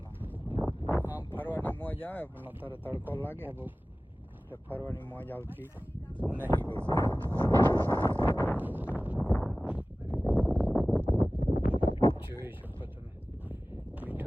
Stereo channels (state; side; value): normal; both; correlation 0.97